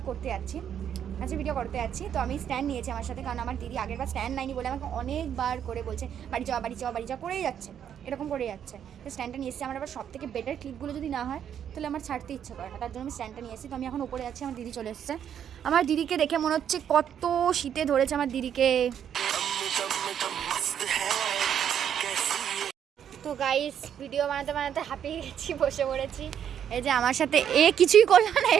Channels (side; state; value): left; quieter; 9.1 dB